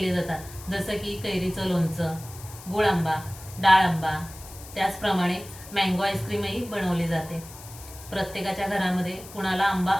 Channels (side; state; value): left; noise; hiss, 17 dB below the sound